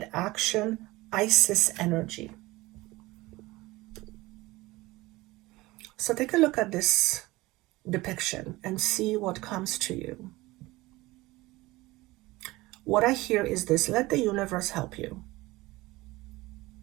action, Isis energy. So take a look at this depiction and see what comes to you. What I hear is this: let the universe help you.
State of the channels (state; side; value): quieter; left; 20.1 dB